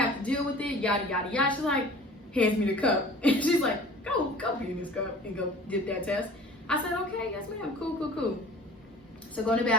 to deal with it, yada, yada, yada. She's like, hands me the cup. And she's like, go pee in this cup and go get that test. I said, okay, yes, ma'am. Cool. So go in the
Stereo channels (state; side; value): normal; both; correlation 0.44